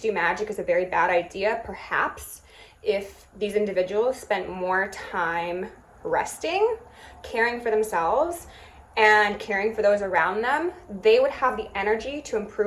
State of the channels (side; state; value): both; identical; correlation 1.00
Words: do magic is a very bad idea. Perhaps if these individuals spent more time resting, caring for themselves, and caring for those around them, they would have the energy to